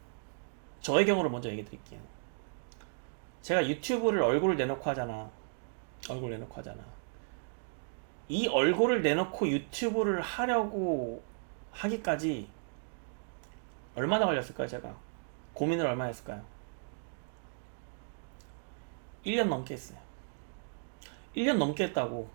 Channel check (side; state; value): left; silent; digital silence